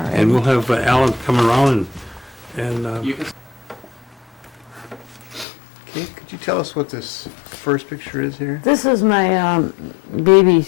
And we'll have Alan come around and You can Okay, could you tell us what this first picture is here? This is my baby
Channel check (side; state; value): right; drops out; at 5.5 s